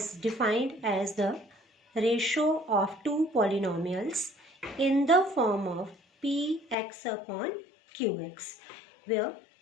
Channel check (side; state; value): right; drops out; at 6.8 s